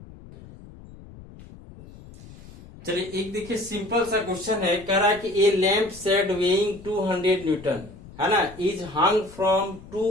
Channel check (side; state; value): left; noise; rumble, 19 dB below the sound